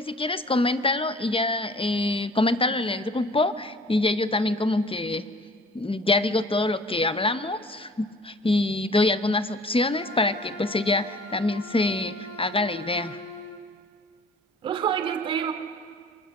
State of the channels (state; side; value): normal; both; correlation 0.49